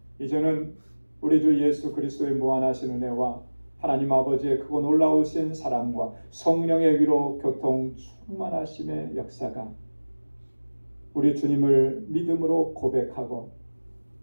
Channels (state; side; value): inverted; both; correlation -1.00